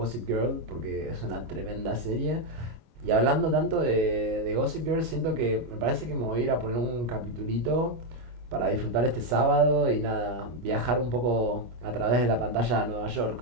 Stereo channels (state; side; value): late; left; 25 ms